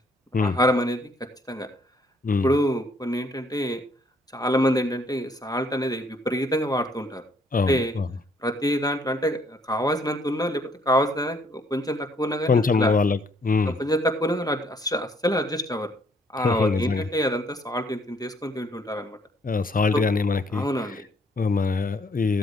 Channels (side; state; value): both; normal; correlation 0.65